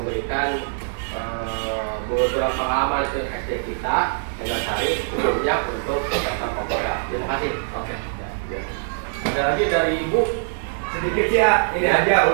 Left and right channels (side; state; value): left; silent; digital silence